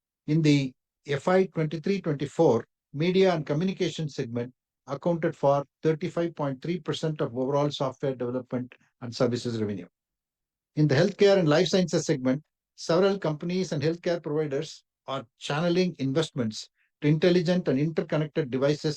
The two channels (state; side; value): identical; both; correlation 1.00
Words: In the FY 23-24, media and communication segment accounted for 35.3% of overall software development and services revenue. In the healthcare and life sciences segment, several companies and healthcare providers are channeling investments to intelligent and interconnected